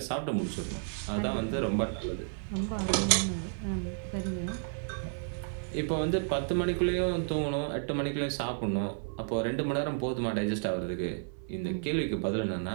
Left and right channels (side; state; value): left; silent; 57 dB below the other